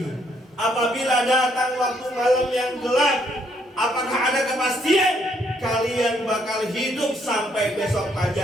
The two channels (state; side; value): normal; both; correlation 0.70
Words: apabila datang waktu malam yang gelap, apakah ada kepastian kalian bakal hidup sampai besok